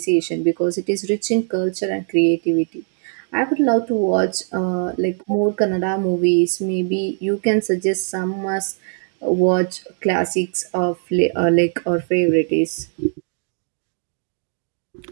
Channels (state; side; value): silent; left; 65 dB below the other